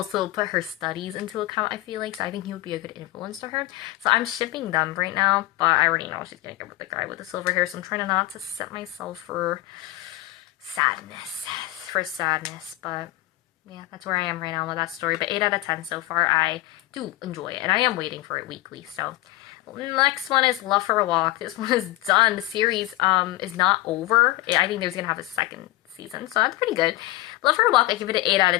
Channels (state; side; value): quieter; right; 17.9 dB